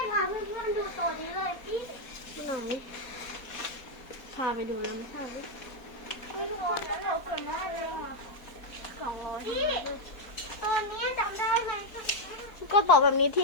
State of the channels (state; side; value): late; right; 4.3 ms